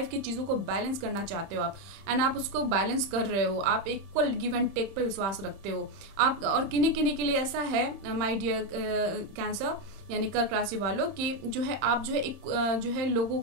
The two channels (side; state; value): left; late; 30 ms